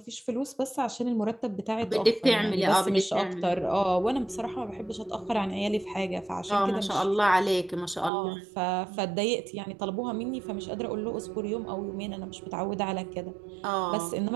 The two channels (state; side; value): drops out; left; at 8.1 s